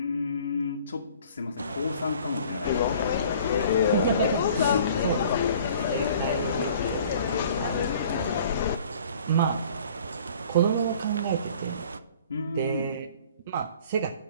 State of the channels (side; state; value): both; inverted; correlation -0.51